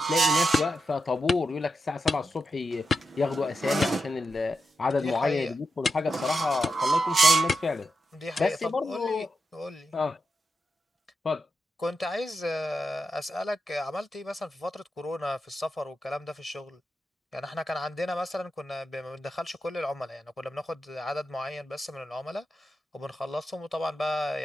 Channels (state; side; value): normal; both; correlation 0.87